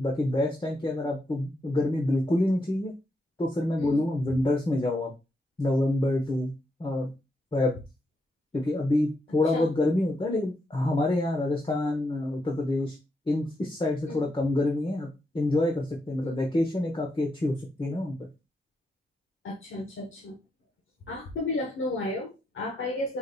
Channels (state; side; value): normal; both; correlation 0.81